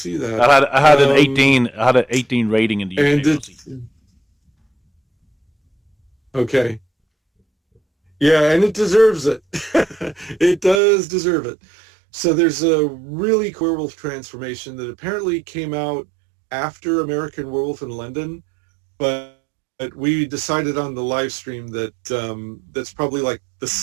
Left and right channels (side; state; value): left; drops out; at 10.8 s